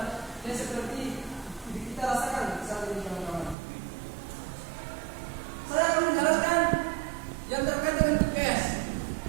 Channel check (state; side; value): drops out; left; at 3.6 s